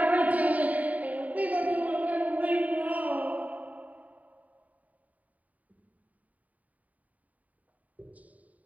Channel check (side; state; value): left; late; 0.071 ms